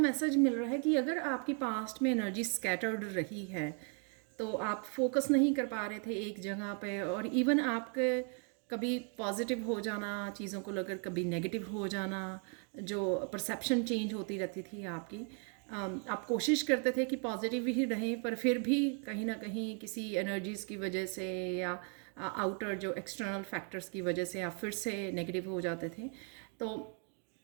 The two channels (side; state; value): left; quieter; 38.9 dB